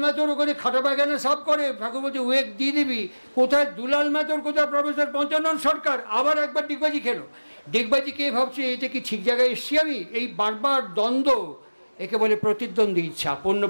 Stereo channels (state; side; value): inverted; both; correlation -1.00